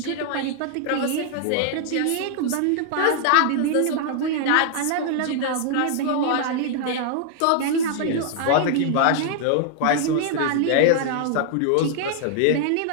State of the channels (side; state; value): both; different; correlation -0.01